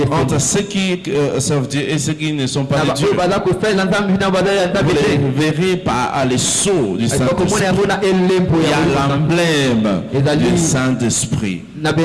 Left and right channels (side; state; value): both; identical; correlation 1.00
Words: entre ceux qui servent Dieu et ceux qui ne sont pas de Dieu. Vous les verrez par les sceaux du Saint-Esprit. Il y a l'emblème du Saint-Esprit.